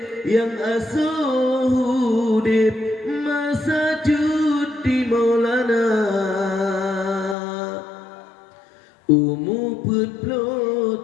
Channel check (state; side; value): drops out; right; at 7.4 s